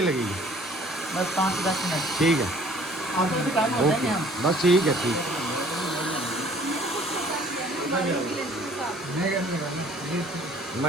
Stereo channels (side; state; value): both; normal; correlation 0.55